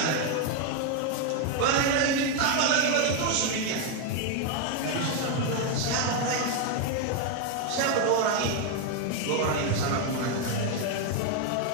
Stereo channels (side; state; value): both; different; correlation 0.01